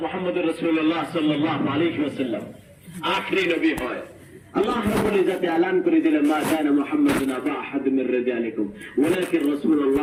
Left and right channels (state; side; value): identical; both; correlation 1.00